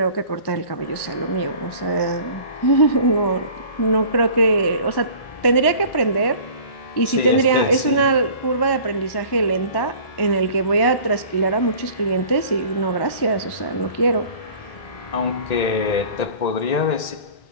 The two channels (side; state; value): right; late; 1.1 ms